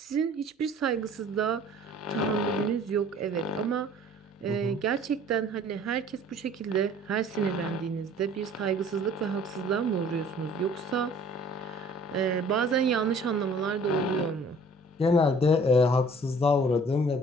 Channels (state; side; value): normal; both; correlation 0.52